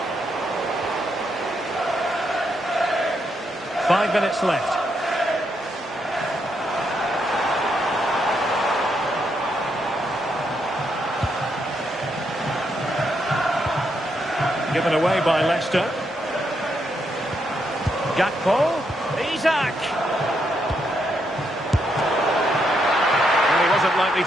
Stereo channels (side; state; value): both; normal; correlation 0.79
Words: Five minutes left. Given away by Leicester. Gakpo. Isak. And he wasn't likely